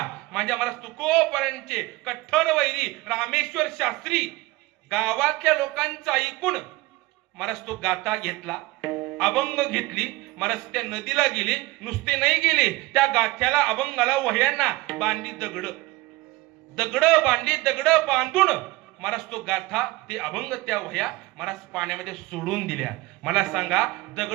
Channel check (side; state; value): left; quieter; 20.6 dB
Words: माझ्या मला तुकोबारांचे कठ्ठर वैरी रामेश्वर शास्त्री गावातल्या लोकांचं ऐकून महाराज तो गाथा घेतला, अभंग घेतली, महाराज त्या नदीला गेले, नुसते नाही गेले, त्या गाथ्याला अभंगाला वह्यांना बांधली दगड बांधली, दगड बांधून महाराज तो गाथा ते अभंग त्या वह्या महाराज पाण्यामध्ये सोडून दिल्या. मला सांगा